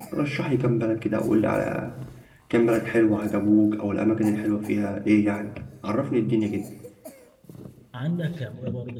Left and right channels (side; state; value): both; identical; correlation 1.00